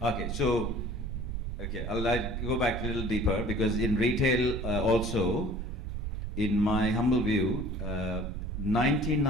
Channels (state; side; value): noise; right; rumble, 4 dB below the sound